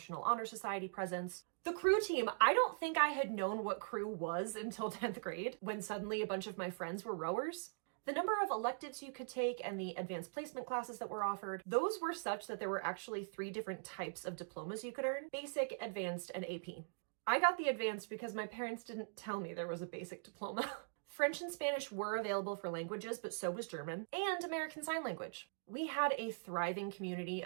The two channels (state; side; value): silent; left; digital silence